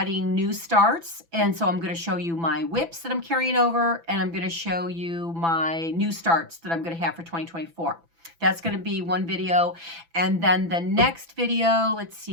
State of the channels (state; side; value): late; left; 6.0 ms